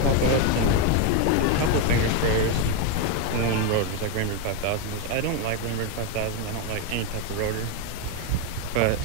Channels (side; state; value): both; different; correlation 0.02